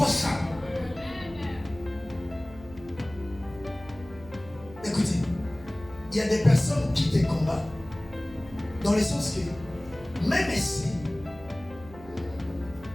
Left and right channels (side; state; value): right; noise; hum, 18 dB below the sound